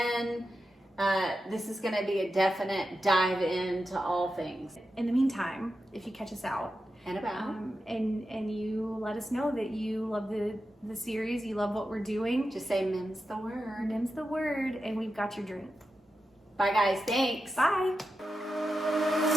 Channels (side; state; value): both; normal; correlation 0.90